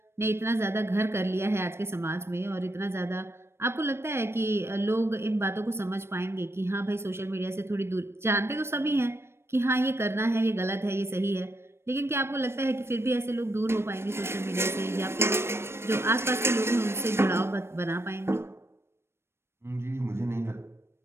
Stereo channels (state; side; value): late; left; 0.12 ms